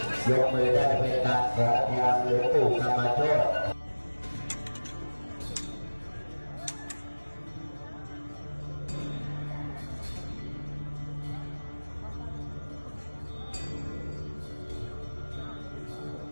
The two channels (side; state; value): both; inverted; correlation -1.00